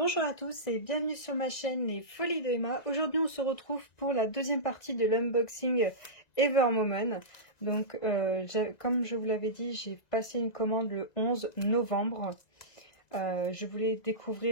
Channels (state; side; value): late; right; 1.9 ms